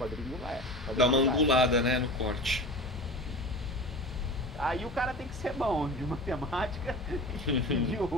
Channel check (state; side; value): normal; both; correlation 0.33